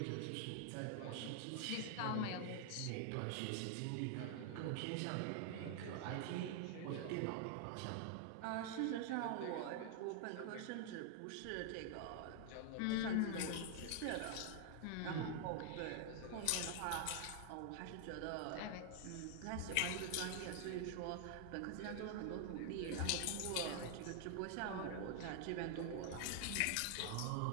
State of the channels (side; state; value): both; different; correlation 0.00